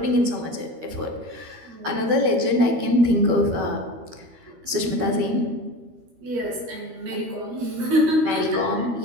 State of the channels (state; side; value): late; left; 13 ms